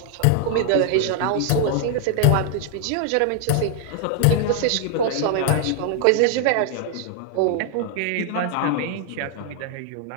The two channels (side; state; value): both; different; correlation 0.00